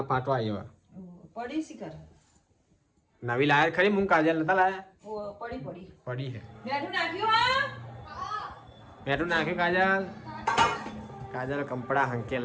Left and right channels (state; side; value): identical; both; correlation 1.00